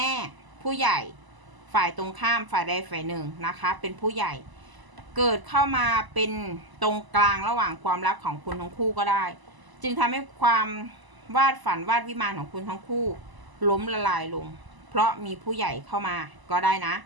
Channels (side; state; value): left; late; 1.0 ms